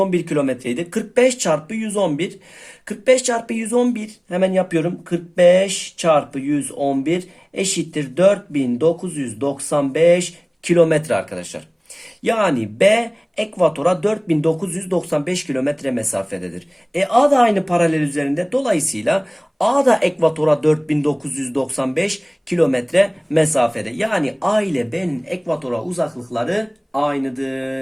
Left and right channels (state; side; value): identical; both; correlation 1.00